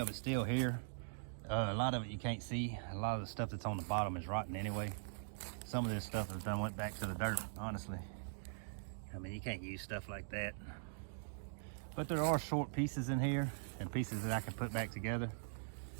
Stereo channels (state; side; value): silent; left; digital silence